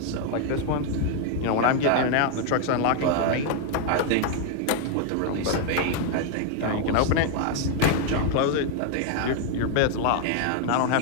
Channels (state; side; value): different; both; correlation 0.00